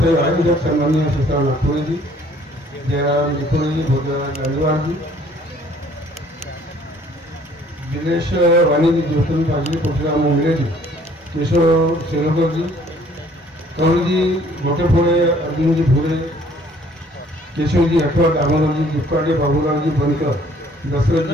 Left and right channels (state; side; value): normal; both; correlation 0.58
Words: सन्माननीय सुशांत नागपुरेजी, जयराम निकोळेजी, भोजराज गांधीवारजी, दिनेश वाणीजी, ज्योतिन पाजी, परशुराम मुंगलेजी, केशव शेलोकरजी, कवळजी गोटेफोडे, अर्जुनजी भोरे, केशवजी हटवट, दामोदरजी दुक्काडे, बाबूरावजी बनकर,